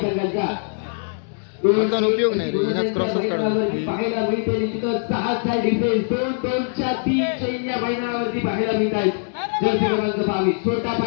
म्हणजे कोणता उपयोग नाही रे हिनाच क्रॉसच काढून पाहायला मिळते निश्चितच 6चा डिफेन्स 2-2च्या 3 चैन्या मैदानावरती पाहायला मिळत आहेत जर क्रमांक 22 छोटा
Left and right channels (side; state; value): right; silent; digital silence